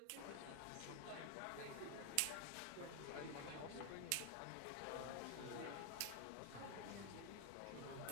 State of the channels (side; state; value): both; different; correlation 0.00